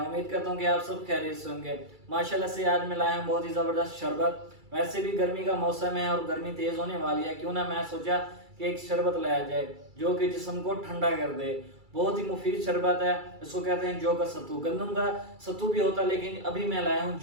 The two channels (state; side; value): late; left; 2.3 ms